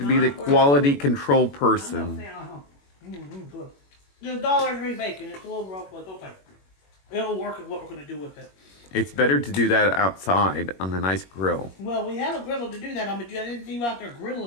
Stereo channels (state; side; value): late; right; 21 ms